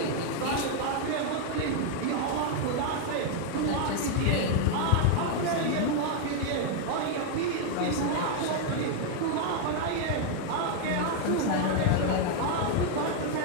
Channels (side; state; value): both; different; correlation 0.00